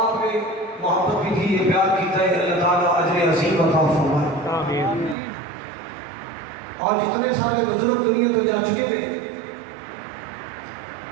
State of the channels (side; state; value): left; drops out; at 5.2 s